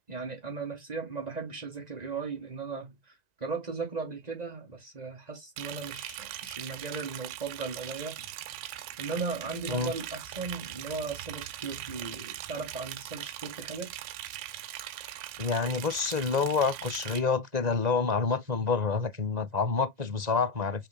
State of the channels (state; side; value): late; left; 1.9 ms